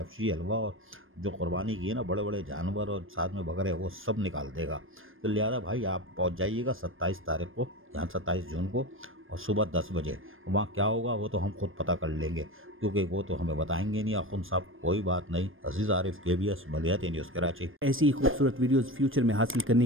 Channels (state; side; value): late; left; 0.59 ms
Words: हलवा और जो कुर्बानी की है ना, बड़े बड़े जानवर और साथ में बकरे, वो सब निकाल देगा। तो लिहाजा भाई आप पहुंच जाइएगा 27 तारीख को, यहाँ 27 जून को, और सुबह 10 बजे। वहाँ क्या होगा वो तो हम खुद पता कर लेंगे, क्योंकि वो तो हमें बताएंगे नहीं आखुन साहब। कोई बात नहीं। अजीज़ आरिफ, KBS मलियाती न्यूज़ कराची। ऐसी ही खूबसूरत वीडियोस फ्यूचर में हासिल